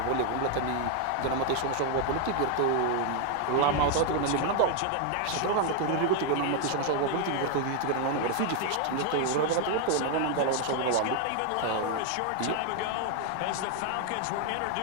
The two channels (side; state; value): both; different; correlation 0.00